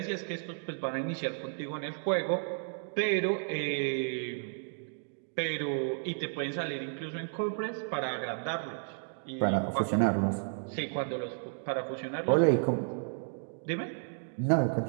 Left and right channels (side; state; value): left; silent; digital silence